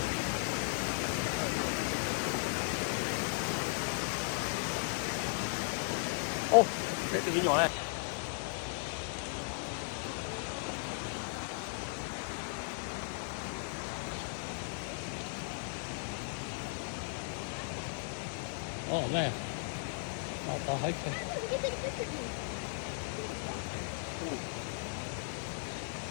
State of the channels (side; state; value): right; silent; digital silence